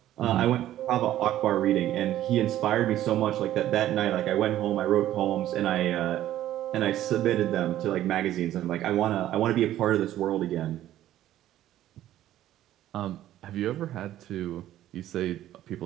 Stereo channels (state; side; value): quieter; left; 13.1 dB